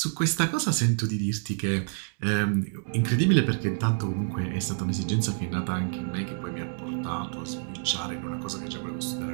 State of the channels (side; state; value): left; silent; 59 dB below the other